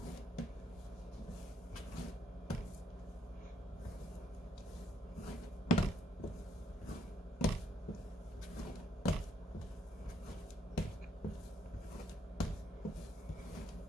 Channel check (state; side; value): normal; both; correlation 0.70